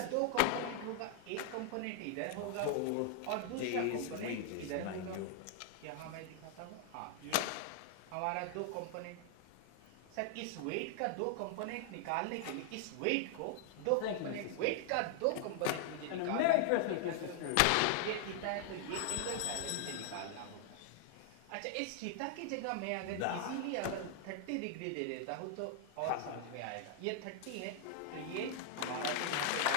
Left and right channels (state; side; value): different; both; correlation 0.00